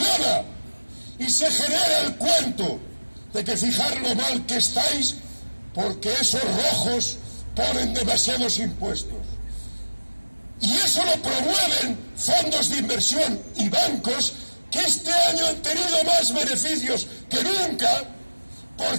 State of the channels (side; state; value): both; inverted; correlation -1.00